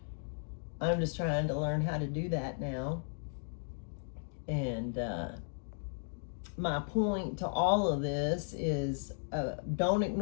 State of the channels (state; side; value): silent; right; digital silence